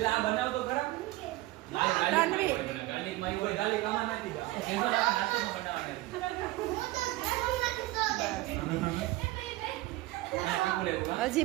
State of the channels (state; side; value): quieter; left; 18.5 dB